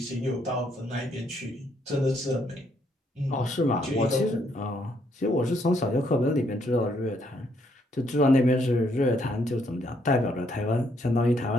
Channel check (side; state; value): both; normal; correlation 0.71